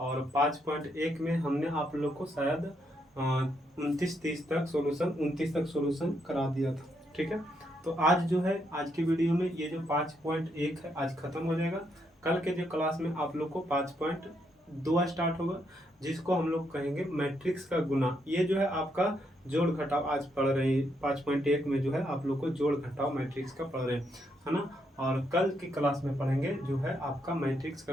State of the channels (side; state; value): both; normal; correlation 0.77